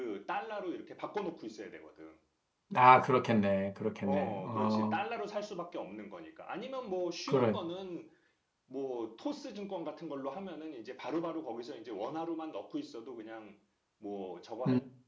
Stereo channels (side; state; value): both; identical; correlation 1.00